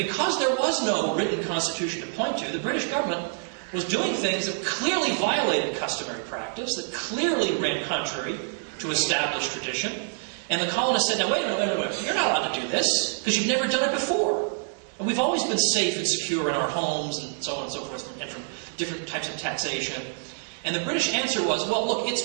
there was no written Constitution to point to, the British government was doing things that clearly violated customary practice, that clearly ran contrary to established tradition. And the colonists said, now wait a minute, you're not allowed to do this, because you've never done it before. And we've always been safe and secure in our homes, and so on and so forth, and from different types of taxation. And the British answer was, well, look,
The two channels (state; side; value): silent; left; 60 dB below the other